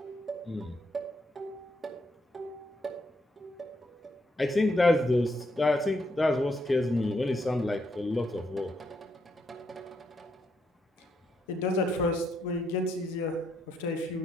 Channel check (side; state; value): both; normal; correlation 0.77